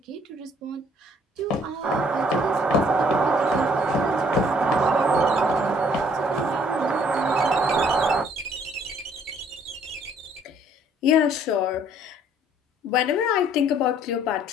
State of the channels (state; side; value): normal; both; correlation 0.61